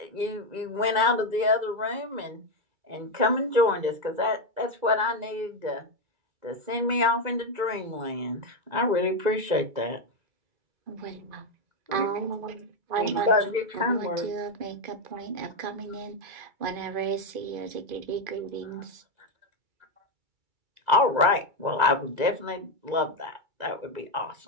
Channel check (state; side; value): late; left; 2.3 ms